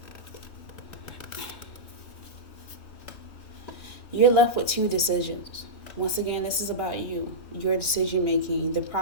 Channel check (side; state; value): right; late; 3.1 ms